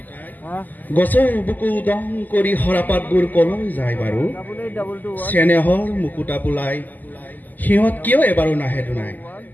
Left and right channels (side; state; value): right; late; 0.084 ms